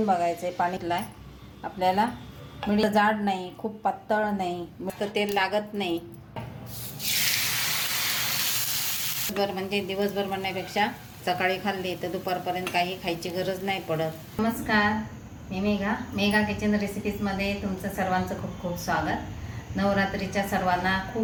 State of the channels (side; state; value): both; identical; correlation 1.00